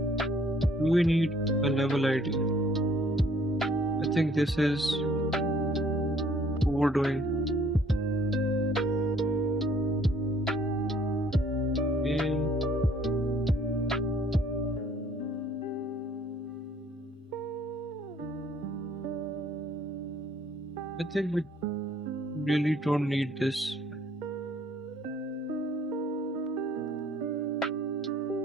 Do we need a level ID? I think this is overdoing. I think we really don't need this.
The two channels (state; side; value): normal; both; correlation 0.60